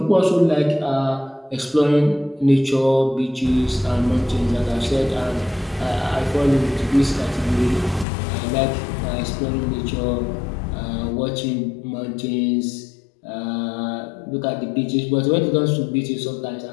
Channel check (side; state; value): right; drops out; at 8.1 s